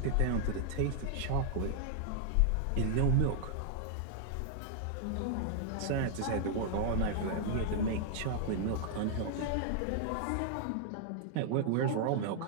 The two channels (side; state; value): both; different; correlation 0.00